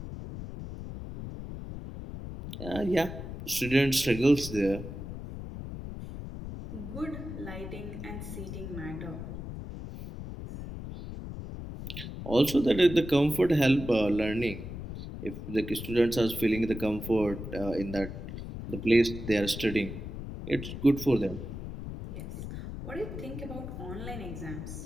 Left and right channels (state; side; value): noise; left; rumble, 9 dB below the sound